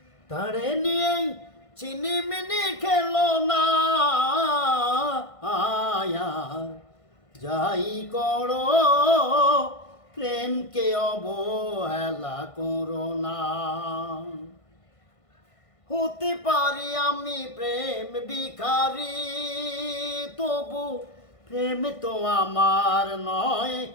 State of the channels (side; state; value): right; late; 1.5 ms